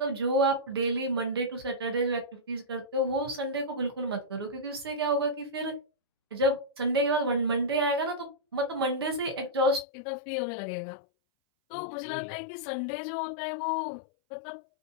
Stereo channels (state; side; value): drops out; right; at 9.9 s